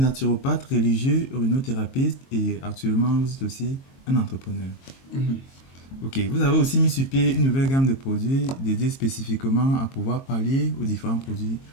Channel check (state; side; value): late; right; 22 ms